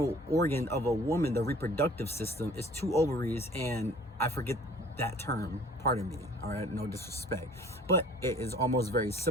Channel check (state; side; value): normal; both; correlation 0.51